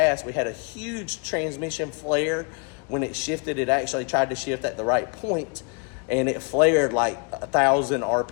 we had a huge transmission flare. When it shifted, it actually tried to shift at the right point, and it flared like 1,000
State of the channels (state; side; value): quieter; right; 35.3 dB